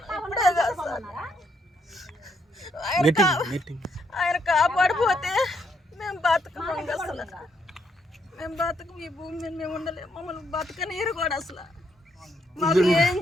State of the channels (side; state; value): both; normal; correlation 0.74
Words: ఇప్పుడే కాదు సార్. ఆయన కాపాడిపోతే మేము బతకం. అసలు మేము బతకం. ఈ భూమి మీద మేము ఉండలేము. మమ్మల్ని బతకనీరు కూడా అసలు. మాకు ఏం